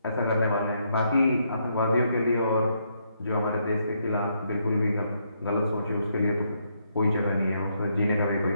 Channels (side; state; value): both; inverted; correlation -0.76